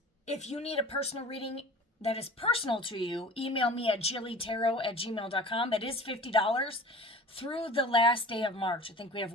if you need a personal reading that is personal to you, email me at jillytarot@gmail.com. That is $50 through the last day of March. I think we have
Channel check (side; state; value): both; normal; correlation 0.41